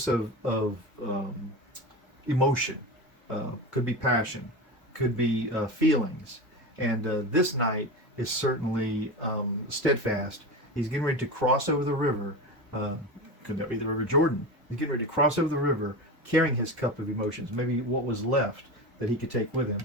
of emotion. Could be passion, could be feelings, and this Knight is certainly steadfast. He's getting ready to cross over the river. Could that be the River Jordan? He's getting ready to cross over the river, carrying his cup of emotions, maybe what was left that he could take with him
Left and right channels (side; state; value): both; normal; correlation 0.25